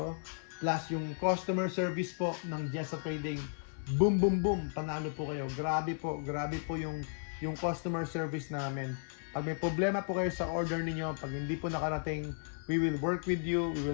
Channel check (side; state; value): right; silent; 55 dB below the other